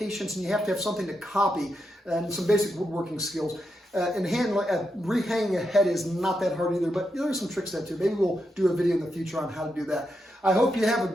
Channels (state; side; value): normal; both; correlation 0.84